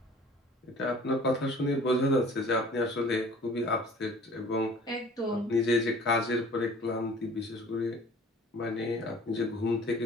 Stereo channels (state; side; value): normal; both; correlation 0.49